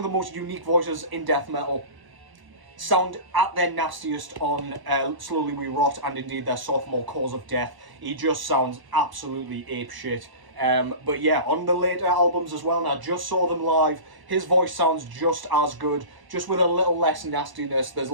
the most unique voices in death metal. Sound at their nastiest on Slowly We Rot, and indeed their sophomore, Cause of Death. He just sounds absolutely apeshit. But yeah, on the later albums as well, and I just saw them live, his voice sounds just as good, just with a little less nastiness. There's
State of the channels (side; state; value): left; late; 1.0 ms